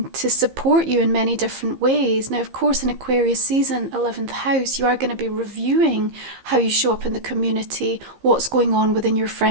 to support you in many different ways. Now, of course, in Aquarius season, 11th house, you are going to be reviewing how you show up in the community, what's going on within your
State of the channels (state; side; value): late; left; 15 ms